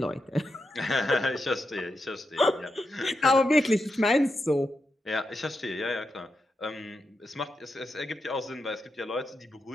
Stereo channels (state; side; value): normal; both; correlation 0.86